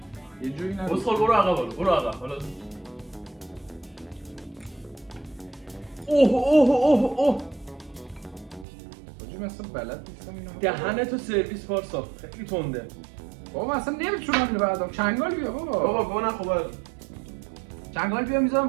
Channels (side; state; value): left; drops out; at 8.7 s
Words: یه جوری نگو بسخال برو عقب حالا اوه حاجی من اصلا بلد نیستم اینو دهنتو سرویس پارسا خیلی تنده. بابا اصلا نمیتونم اینو بردارم چنگال بیا بابا بابا نخوبه چنگال بیا میذارم